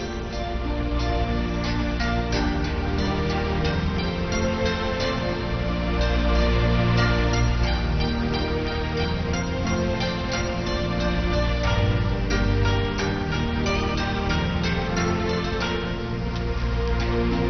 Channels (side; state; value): both; identical; correlation 1.00